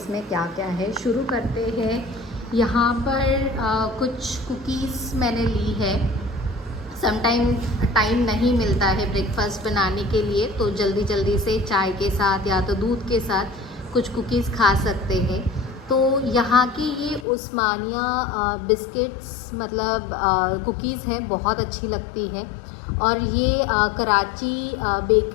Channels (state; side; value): drops out; right; at 17.2 s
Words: क्या क्या है। शुरू करते हैं। यहाँ पर कुछ कुकीज़ मैंने ली है। टाइम नहीं मिलता है ब्रेकफास्ट बनाने के लिए, तो जल्दी जल्दी से चाय के साथ या तो दूध के साथ कुछ कुकीज़ खा सकते हैं। तो यहाँ की ये उस्मानिया बिस्किट्स मतलब कुकीज़ है, बहुत अच्छी लगती है। और ये कराची